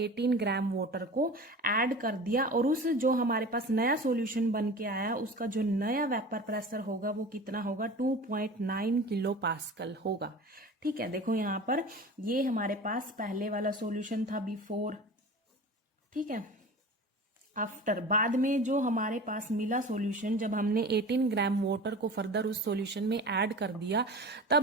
ग्राम वाटर को ऐड कर दिया। और उस जो हमारे पास नया सॉल्यूशन बन के आया उसका जो नया वेपर प्रेशर होगा वो कितना होगा, 2.9 किलो पास्कल होगा। ठीक है, देखो यहाँ पर ये हमारे पास पहले वाला सॉल्यूशन था, बिफोर। ठीक है, आफ्टर, बाद में जो हमारे पास मिला सॉल्यूशन, जब हमने 18 ग्राम वाटर को फर्दर उस सॉल्यूशन में ऐड कर दिया,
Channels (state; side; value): normal; both; correlation 0.36